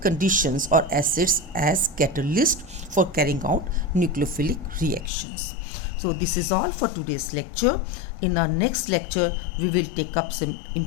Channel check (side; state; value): right; drops out; at 5.1 s